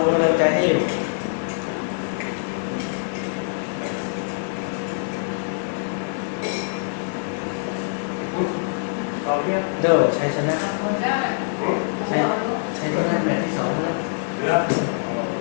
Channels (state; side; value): silent; right; digital silence